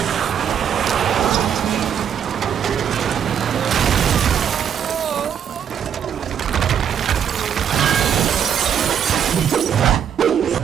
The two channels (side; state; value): left; quieter; 8.5 dB